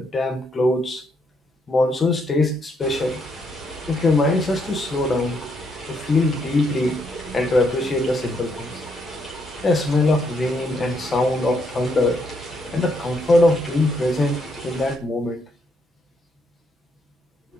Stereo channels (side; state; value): both; normal; correlation 0.75